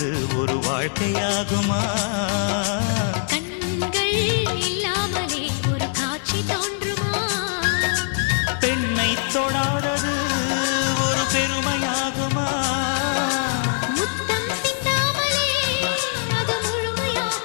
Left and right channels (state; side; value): silent; right; digital silence